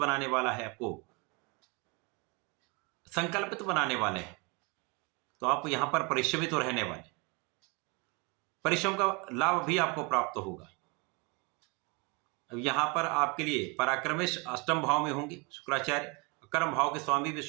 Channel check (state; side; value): quieter; left; 29.9 dB